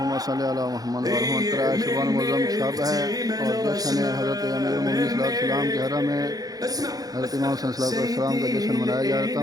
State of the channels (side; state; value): left; late; 0.18 ms